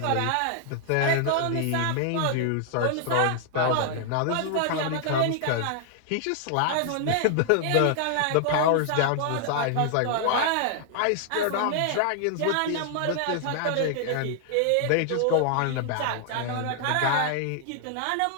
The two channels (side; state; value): both; different; correlation -0.01